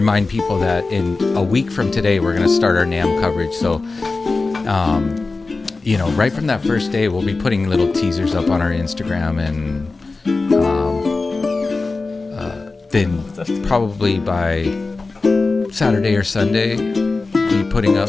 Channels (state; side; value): quieter; right; 3.7 dB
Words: people that in a week from today, we're going to start our NAMM coverage. So, you know, right from that first day, we'll be putting little teasers up on our Instagram, and then probably by Saturday or Sunday, be putting